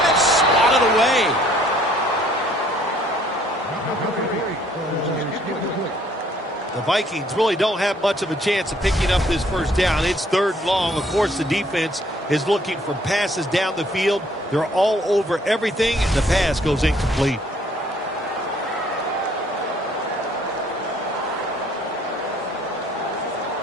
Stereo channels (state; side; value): normal; both; correlation 0.62